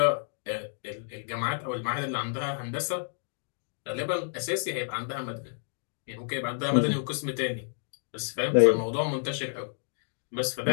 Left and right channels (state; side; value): silent; right; digital silence